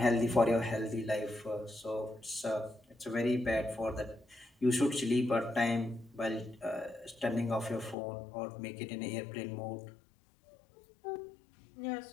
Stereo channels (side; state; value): right; drops out; at 8.0 s